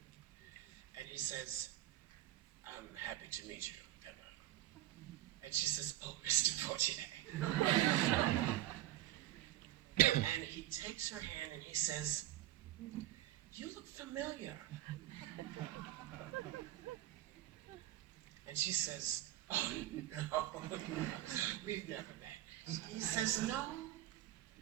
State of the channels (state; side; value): quieter; left; 14.3 dB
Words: And he says, I'm happy to meet you, Emma. And she says, oh, Mr. Poitier. And he takes her hand and he says, you look familiar. And she says, oh, no, we've never met. He says, no,